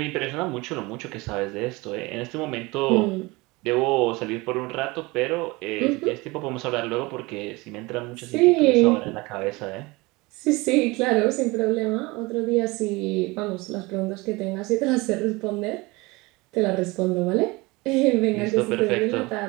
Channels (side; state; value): left; quieter; 23.4 dB